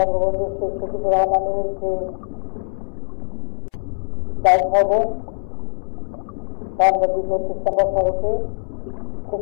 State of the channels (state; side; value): silent; right; 64 dB below the other